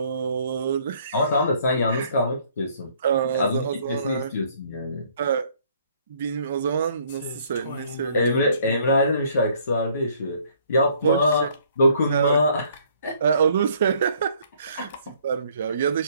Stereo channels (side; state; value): both; inverted; correlation -0.62